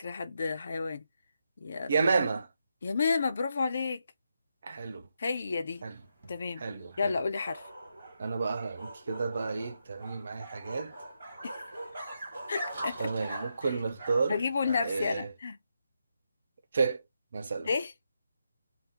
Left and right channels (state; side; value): inverted; both; correlation -0.83